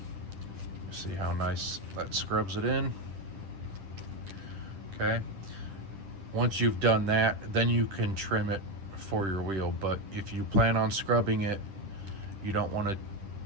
you see how nice that scrubs it in. Okay, once you've done that, then you can trim it for your wheel. But if you plan on scrubbing it, you don't want to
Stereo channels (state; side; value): late; left; 10 ms